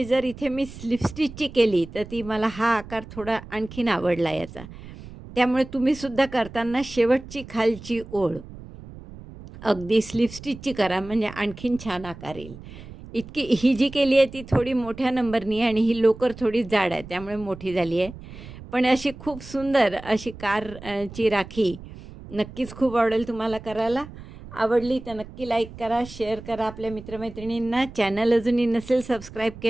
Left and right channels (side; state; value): right; noise; rumble, 15 dB below the sound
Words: जर इथे मी स्लिप स्टिचची केली तर ती मला हा आकार थोडा आणखीन आवडला याचा. त्यामुळे तुम्हीसुद्धा करताना शेवटची खालची ओळ अगदी स्लिप स्टिचची करा, म्हणजे आणखीन छान आकार येईल. ही जी केली आहे ती थोडी मोठ्या नंबरनी आहे आणि ही लोकर थोडी जाड आहे, त्यामुळे मोठी झाली आहे. पण अशी खूप सुंदर अशी ची राखी नक्कीच खूप आवडेल तुम्हाला करायला. आवडली तर नक्की लाईक करा, शेअर करा आपल्या मित्रमैत्रिणींना. चॅनल अजूनही नसेल सबस्क्राईब